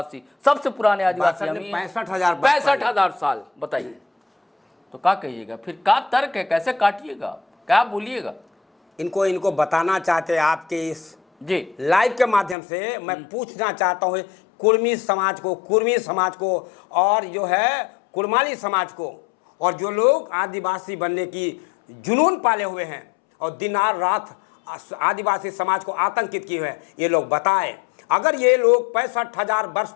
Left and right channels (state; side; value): drops out; right; at 12.6 s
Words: सबसे पुराने आदिवासी हम ही हैं। 65,000 साल। बताइए तो क्या कहिएगा फिर? क्या तर्क है, कैसे काटिएगा, क्या बोलिएगा? इनको बताना चाहते हैं आपके इस जी लाइव के माध्यम से। मैं पूछना चाहता हूँ कुर्मी समाज को और जो है कुर्माली समाज को, और जो लोग आदिवासी बनने की जुनून पाले हुए हैं और दिन रात आदिवासी समाज को आतंकित किए हुए हैं, ये लोग बताएं। अगर ये लोग 65,000 वर्ष